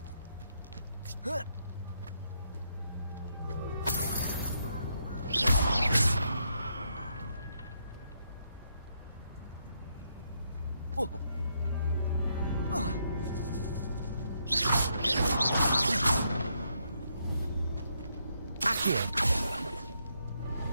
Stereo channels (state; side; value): inverted; both; correlation -0.77